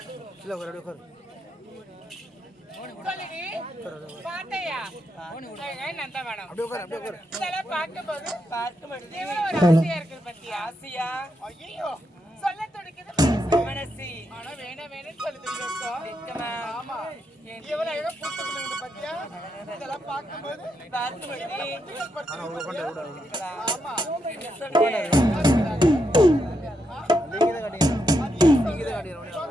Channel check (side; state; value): both; normal; correlation 0.82